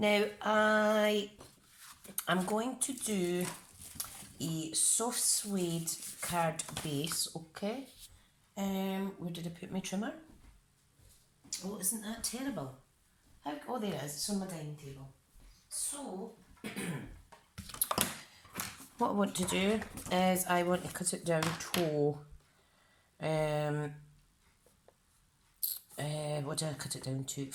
I'm going to do a soft suede card base, okay? Where did I put my trimmer? Oh, isn't that terrible? Oh, there it is. It's on my dining table. So, what I want to do is I want to cut it down to, what do I cut it down to?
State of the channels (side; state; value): both; identical; correlation 1.00